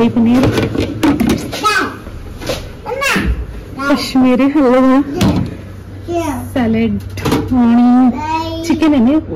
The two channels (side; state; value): both; identical; correlation 1.00